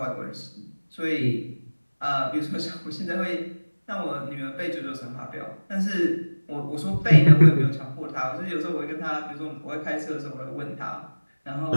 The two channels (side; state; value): both; inverted; correlation -1.00